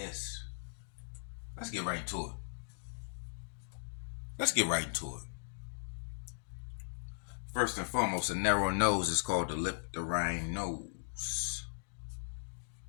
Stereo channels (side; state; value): right; silent; digital silence